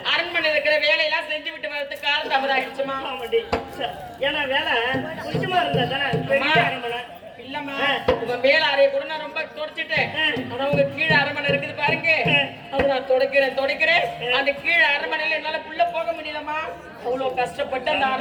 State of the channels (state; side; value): identical; both; correlation 1.00